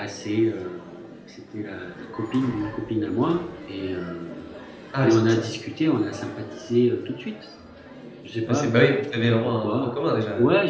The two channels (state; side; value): identical; both; correlation 1.00